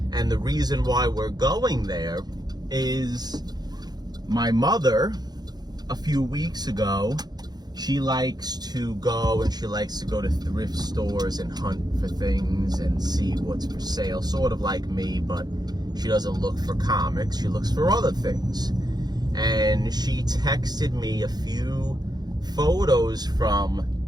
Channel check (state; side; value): late; left; 0.20 ms